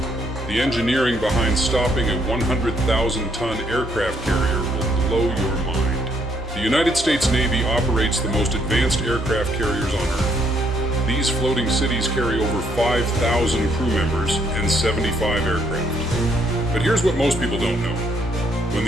The engineering behind stopping a 100,000-ton aircraft carrier will blow your mind. The United States Navy operates the most advanced aircraft carriers on Earth. These floating cities carry over 5,000 crew members and 75 aircraft. But here's what most people don't know. When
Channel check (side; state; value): both; normal; correlation 0.71